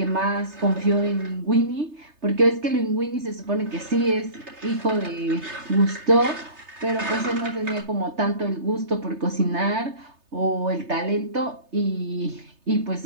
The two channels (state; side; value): late; left; 3.3 ms